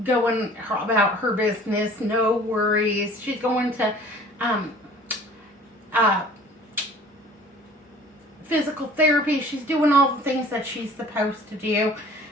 going about her business, no worries. She's going to physical therapy. She's doing all the things that she's supposed to do,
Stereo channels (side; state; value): both; normal; correlation 0.49